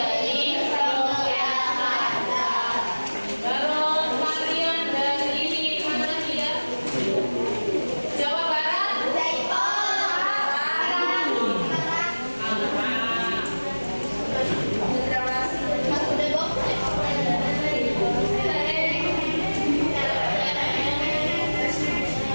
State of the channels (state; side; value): inverted; both; correlation -1.00